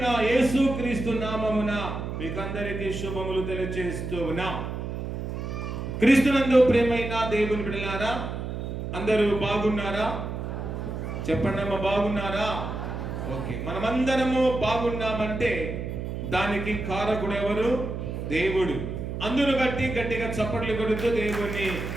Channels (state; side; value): noise; right; hum, 5 dB below the sound